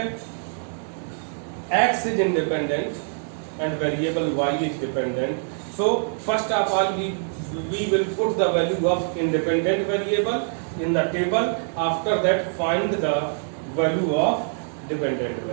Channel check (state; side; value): silent; left; 56 dB below the other